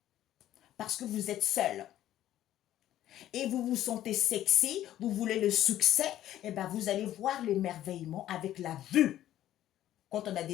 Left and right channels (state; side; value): quieter; right; 12.7 dB